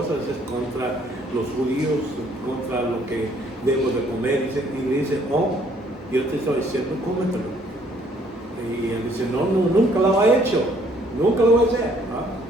es contra los judíos, contra lo que debo de comer. Y le dice, oh, yo te estoy diciendo, cómetelo. Y él dice, no, nunca lo he hecho, nunca lo voy a hacer.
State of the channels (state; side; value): normal; both; correlation 0.63